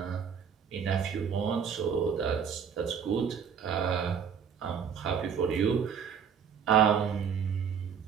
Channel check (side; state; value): left; quieter; 7.3 dB